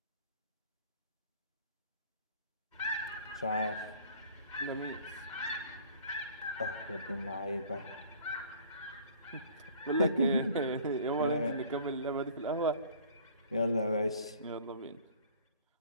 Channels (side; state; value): both; inverted; correlation -0.51